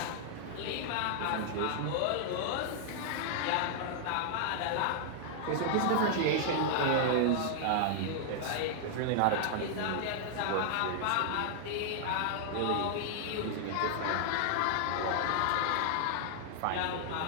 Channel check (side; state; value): both; different; correlation -0.01